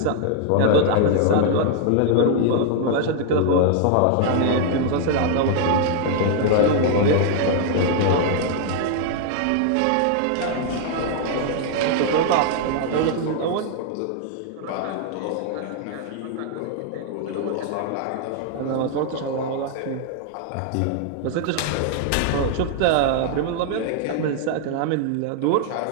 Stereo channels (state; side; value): different; both; correlation 0.00